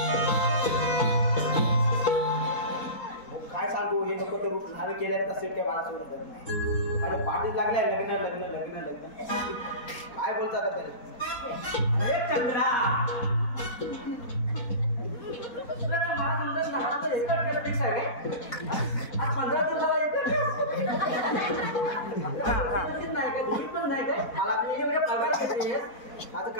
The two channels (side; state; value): right; late; 4.1 ms